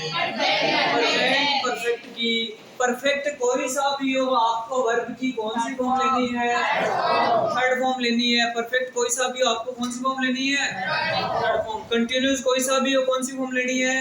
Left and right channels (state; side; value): identical; both; correlation 1.00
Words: परफेक्ट की। परफेक्ट कोई सा भी हो आपको वर्ब की कौन सी फॉर्म लेनी है? थर्ड फॉर्म लेनी है। परफेक्ट कोई सा भी हो आपको कौन सी फॉर्म लेनी है? Third form. कंटिन्यूअस कोई सा भी हो कौन सी फॉर्म लेनी है?